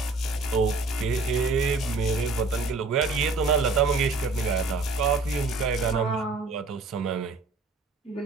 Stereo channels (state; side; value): quieter; left; 3.6 dB